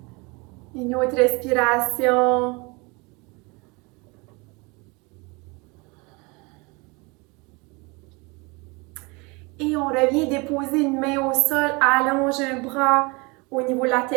Une autre respiration. Et on revient déposer une main au sol, allonge un bras au niveau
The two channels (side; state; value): left; quieter; 27.7 dB